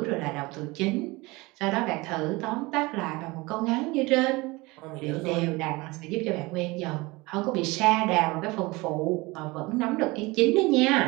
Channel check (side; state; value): left; quieter; 23.1 dB